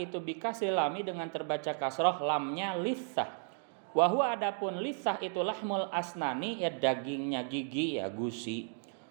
bikasril lami, dengan terbaca kasroh lamnya litsah. Wa huwa, adapun litsah itu lahmul asnani, ya dagingnya gigi, ya gusi.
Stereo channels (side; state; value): left; silent; 55 dB below the other